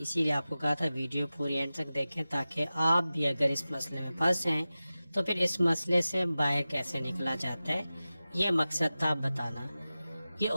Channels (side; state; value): both; inverted; correlation -0.96